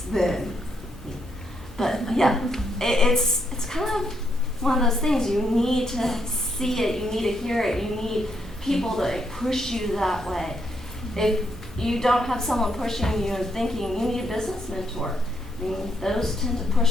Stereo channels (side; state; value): both; normal; correlation 0.77